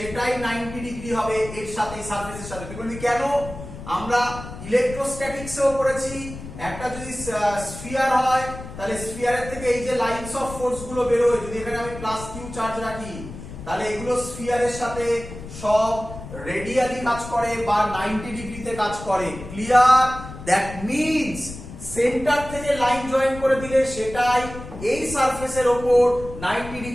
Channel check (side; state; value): left; noise; rumble, 12 dB below the sound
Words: 90 ডিগ্রি হবে এর সাথে, সারফেসের সাথে। তুই বলবি কেন? আমরা ইলেকট্রোস্ট্যাটিক্সেও পড়েছি, একটা যদি স্ফিয়ার হয় তাহলে স্ফিয়ারের থেকে এই যে লাইনস অফ ফোর্স গুলো বেরোয়, যদি এখানে আমি প্লাস কিউ চার্জ রাখি তাহলে এগুলো স্ফিয়ারের সাথে সব রেডিয়ালি কাজ করে বা 90 ডিগ্রিতে কাজ করে। ক্লিয়ার? দ্যাট মিন্স সেন্টার থেকে লাইন জয়েন করে দিলে সেটাই এই সারফেসের উপর 90